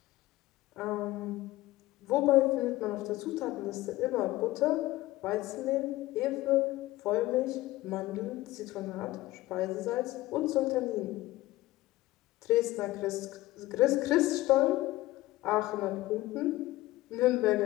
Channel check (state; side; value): quieter; right; 17.6 dB